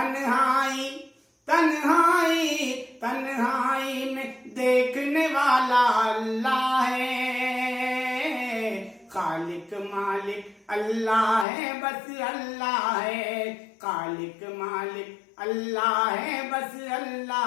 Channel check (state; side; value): drops out; right; at 11.5 s